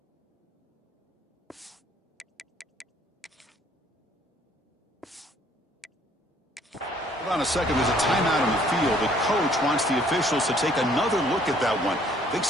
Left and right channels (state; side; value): normal; both; correlation 0.61